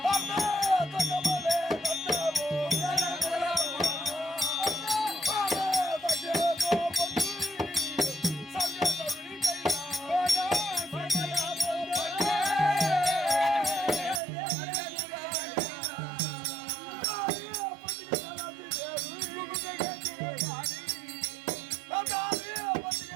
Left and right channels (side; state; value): left; drops out; at 14.2 s